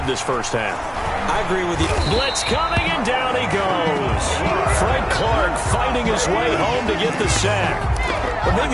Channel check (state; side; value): identical; both; correlation 1.00